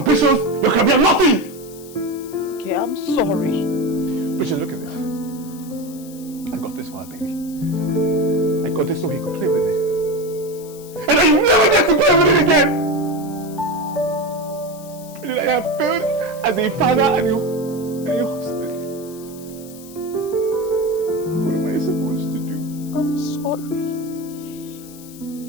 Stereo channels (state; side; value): noise; left; hiss, 19 dB below the sound